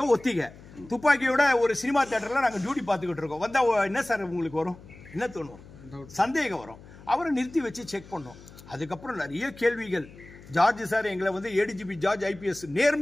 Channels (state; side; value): noise; left; hum, 20 dB below the sound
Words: ஒத்திகை துப்பாக்கியோட ஒரு சினிமா தியேட்டர்ல நாங்க டியூட்டி பார்த்துக்கிட்டு இருக்கோம். வந்தா என்ன சார் உங்களுக்கு வரும், என்ன தோணும், சந்தேகம் வரும். அவரை நிறுத்தி வச்சு செக் பண்ணோம். அதுக்கப்புறம் நிறைய கேள்விகள். ஜார்ஜ் சார் எங்களை வந்து ஏடிஜிபி ஜார்ஜ் ஐபிஎஸ்